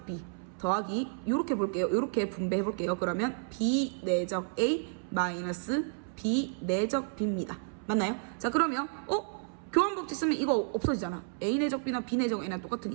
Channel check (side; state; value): left; silent; 57 dB below the other